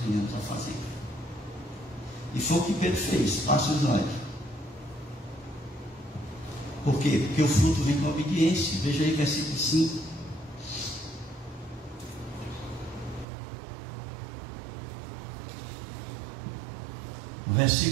venhamos a fazer. E foi o que Pedro fez. Passa o slide. Por quê? Porque o fruto vem com a obediência. Veja aí versículo 5. O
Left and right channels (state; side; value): drops out; left; at 13.2 s